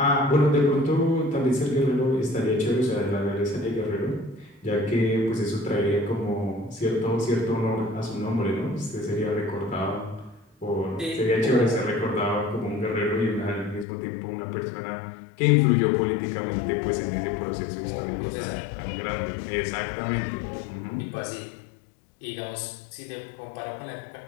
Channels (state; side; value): drops out; right; at 13.9 s